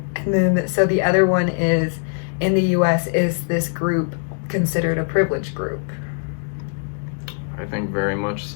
and then so the other one is, in the US, is this group considered a privileged group? I think very much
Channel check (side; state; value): right; silent; digital silence